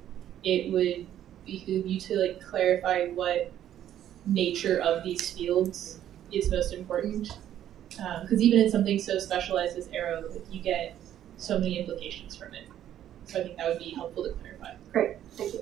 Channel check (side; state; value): left; quieter; 11.2 dB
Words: it would behoove you to like clarify what nature of these fields is most important. Because even in something so specialized as aero, you get so many implications from it. So I think that would be helpful to clarify. Great, thank you.